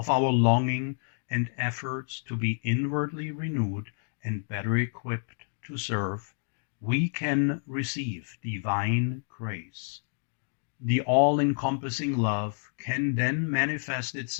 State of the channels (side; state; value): right; silent; digital silence